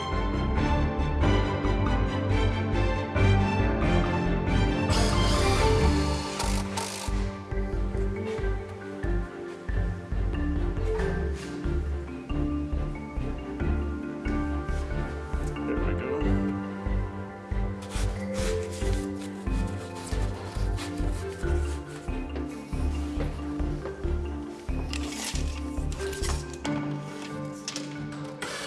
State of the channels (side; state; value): both; identical; correlation 1.00